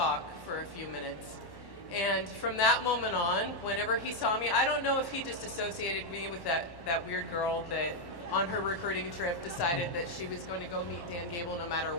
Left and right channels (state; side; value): late; right; 1.1 ms